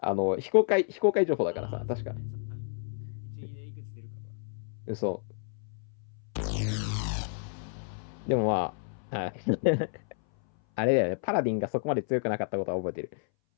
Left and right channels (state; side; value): silent; right; 57 dB below the other